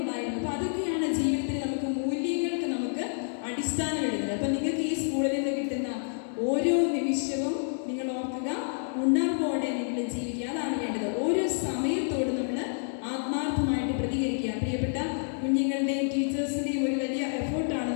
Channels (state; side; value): silent; right; 59 dB below the other